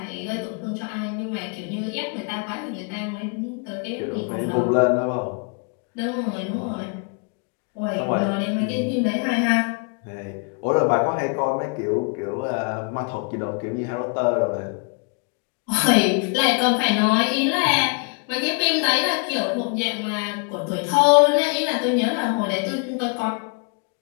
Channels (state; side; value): quieter; right; 36.6 dB